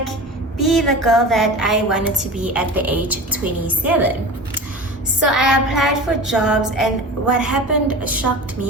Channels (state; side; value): normal; both; correlation 0.34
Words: be the girl that I wanted to be at the age of 27. So I applied for jobs, and what happened shocked